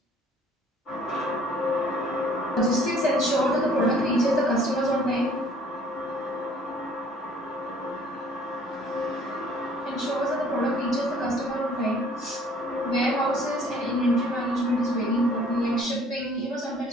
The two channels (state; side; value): normal; both; correlation 0.56